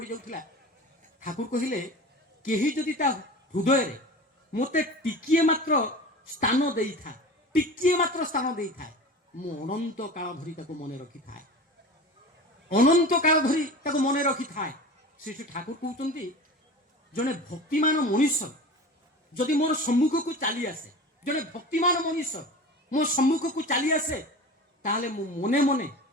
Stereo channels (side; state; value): both; normal; correlation 0.34